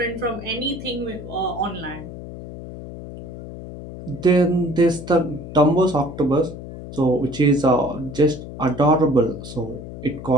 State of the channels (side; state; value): left; noise; hum, 12 dB below the sound